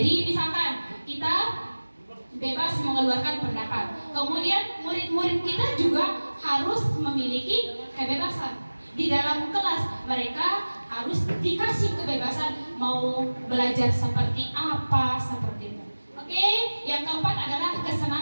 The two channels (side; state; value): both; inverted; correlation -1.00